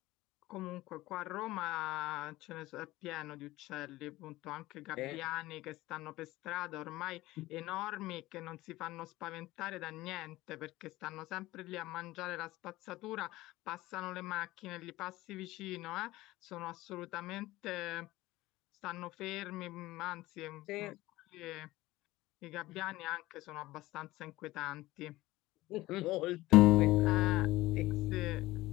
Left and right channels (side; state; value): right; quieter; 18.0 dB